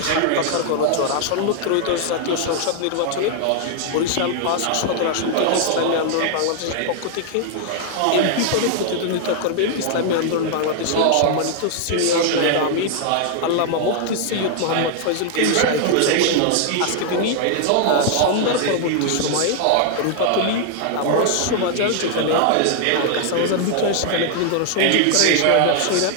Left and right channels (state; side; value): different; both; correlation 0.00